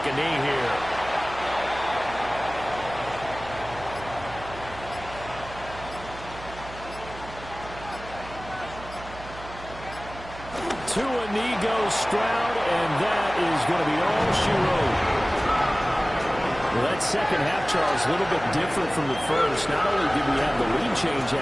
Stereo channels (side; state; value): right; noise; hum, 15 dB below the sound